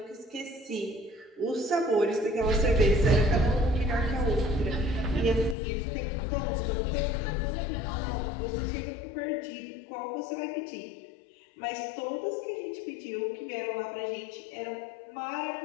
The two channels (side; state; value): right; drops out; at 5.6 s